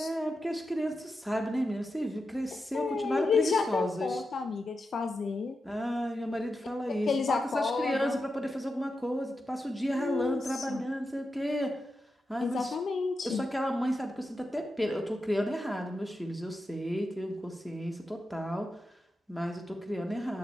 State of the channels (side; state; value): both; normal; correlation 0.89